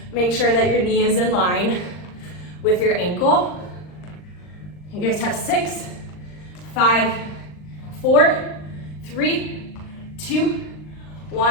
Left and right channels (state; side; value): late; right; 39 ms